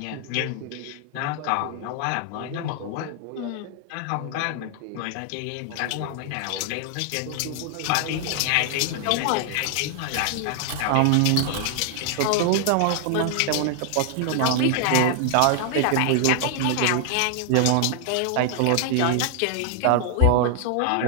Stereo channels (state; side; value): different; both; correlation 0.00